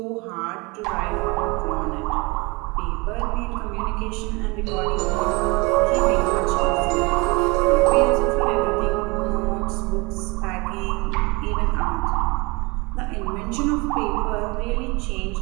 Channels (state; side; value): quieter; left; 26.7 dB